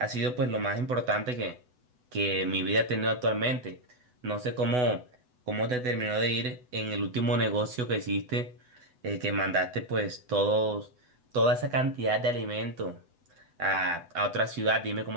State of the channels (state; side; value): late; left; 8.0 ms